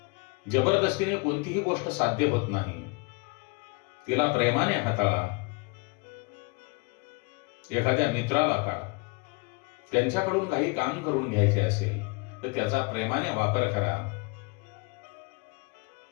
जबरदस्तीने कोणतीही गोष्ट साध्य होत नाही. तिला प्रेमाने हाताळा. एखाद्या मित्राला का त्यांच्याकडून काही काम करून घ्यायचे असेल तर त्याचा प्रेमाने वापर करा.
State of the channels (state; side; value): quieter; right; 29.0 dB